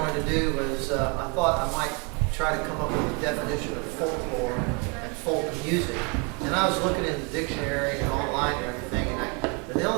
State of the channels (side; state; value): left; quieter; 33.4 dB